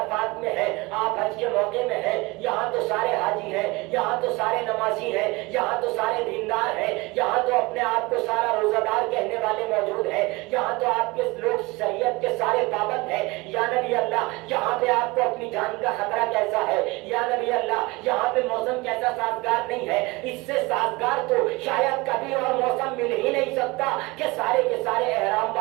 میں ہیں، آپ حج کے موقع میں ہیں، یہاں تو سارے حاجی ہیں، یہاں تو سارے نمازی ہیں، یہاں تو سارے دیندار ہیں، یہاں تو اپنے آپ کو سارا روزہ دار کہنے والے موجود ہیں، یہاں تو آپ کے لوگ شریعت کے سارے پابند ہیں۔ یا نبی اللہ یہاں پہ آپ کو اپنی جان کا خطرہ کیسا ہے؟ یا نبی اللہ یہاں پہ موسم کیسا سازگار نہیں ہے؟ اس سے سازگار تو شاید کبھی اور موسم مل ہی نہیں سکتا کہ سارے کے سارے احرام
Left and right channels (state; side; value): quieter; left; 23.6 dB